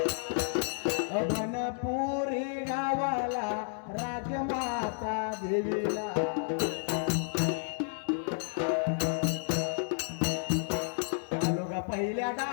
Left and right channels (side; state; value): right; silent; digital silence